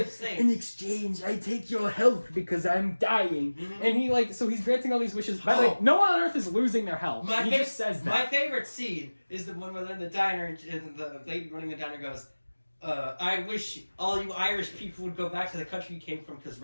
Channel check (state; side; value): inverted; both; correlation -1.00